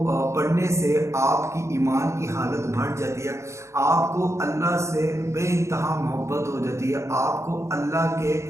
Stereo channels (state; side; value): late; left; 0.14 ms